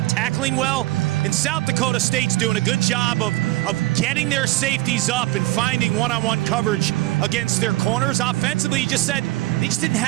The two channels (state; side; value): quieter; left; 18.7 dB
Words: tackling well. And South Dakota State's doing a good job of getting their safeties up and finding one-on-one coverage against their corners. Offensively, he just said they just didn't